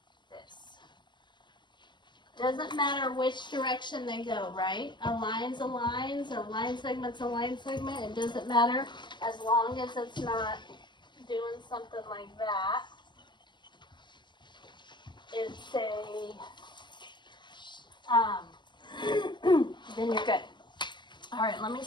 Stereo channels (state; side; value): late; right; 0.22 ms